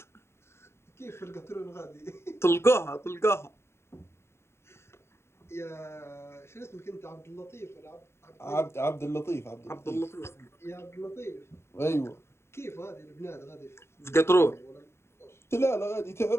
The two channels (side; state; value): right; late; 0.12 ms